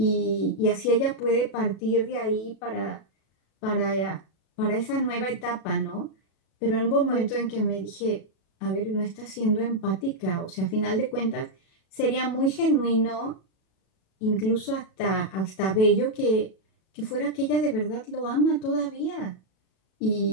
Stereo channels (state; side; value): late; right; 37 ms